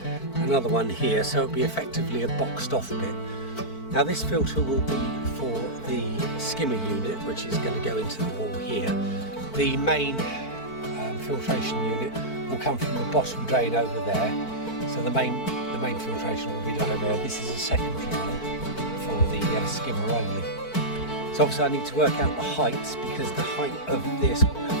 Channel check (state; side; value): late; right; 4.5 ms